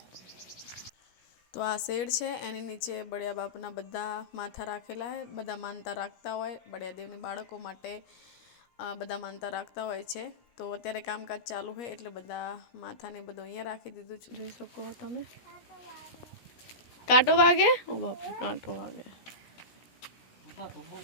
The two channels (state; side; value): late; right; 17 ms